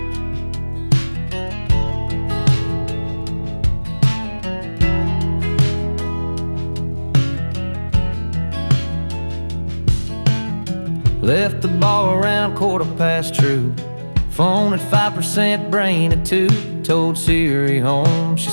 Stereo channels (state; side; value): inverted; both; correlation -1.00